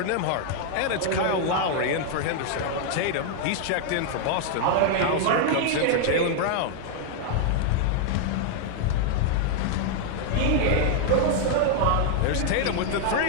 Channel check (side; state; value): both; different; correlation 0.00